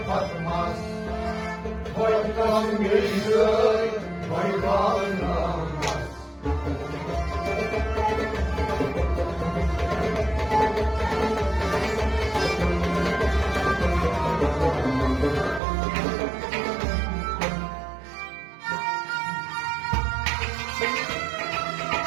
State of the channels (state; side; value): drops out; left; at 15.6 s